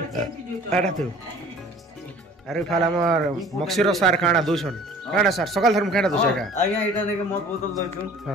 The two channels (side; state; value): both; normal; correlation 0.49